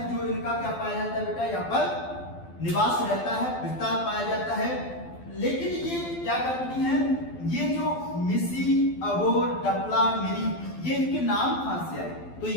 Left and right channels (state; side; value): late; right; 12 ms